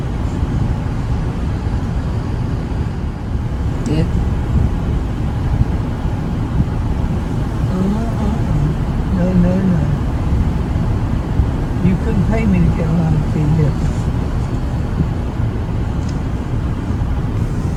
Yeah. No. You couldn't pay me to get on TV.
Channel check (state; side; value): identical; both; correlation 1.00